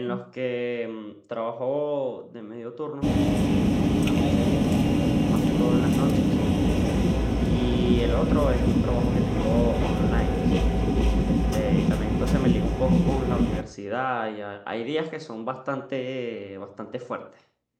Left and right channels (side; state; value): both; identical; correlation 1.00